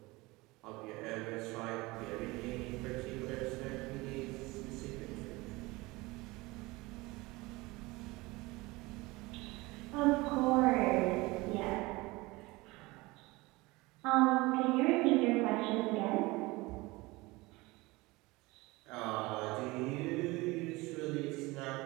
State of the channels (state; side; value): quieter; left; 22.2 dB